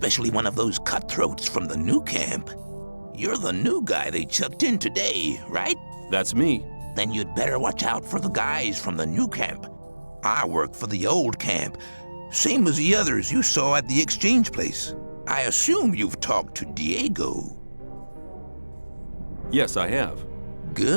one of those cutthroats from the new camp. You're the new guy they chucked in today, right? That's me. Then you'd better watch out for the guys from the new camp. I work for the old camp, same as the others you saw at the exchange place. I assume you've talked to Diego. Yes, I have.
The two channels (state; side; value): inverted; both; correlation -1.00